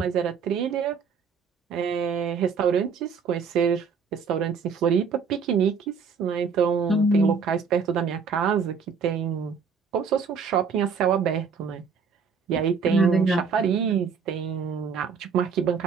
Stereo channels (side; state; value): left; quieter; 5.7 dB